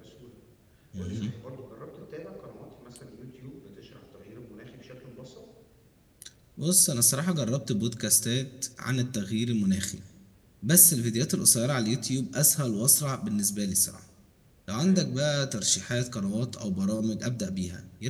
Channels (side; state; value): both; identical; correlation 1.00